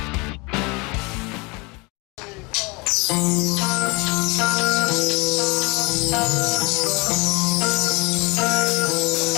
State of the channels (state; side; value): quieter; right; 27.2 dB